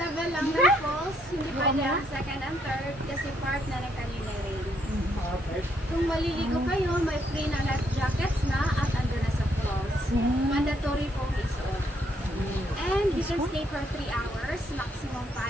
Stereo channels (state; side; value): normal; both; correlation 0.72